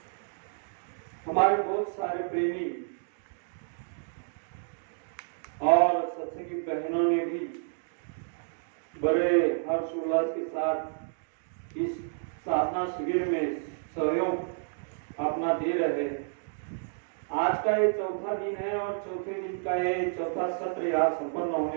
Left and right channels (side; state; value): left; silent; digital silence